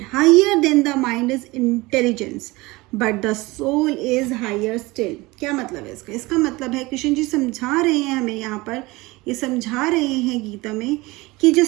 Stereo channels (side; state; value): left; quieter; 22.0 dB